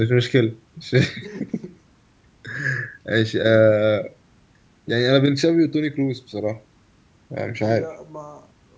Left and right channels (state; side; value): identical; both; correlation 1.00